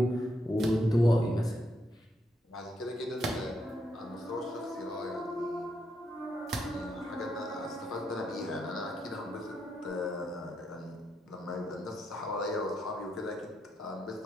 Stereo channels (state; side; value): normal; both; correlation 0.79